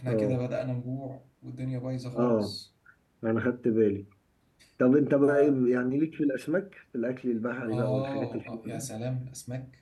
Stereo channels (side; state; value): both; identical; correlation 1.00